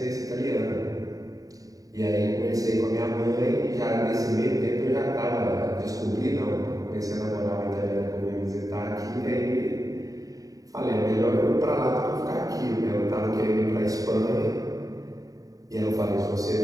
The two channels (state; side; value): late; left; 0.17 ms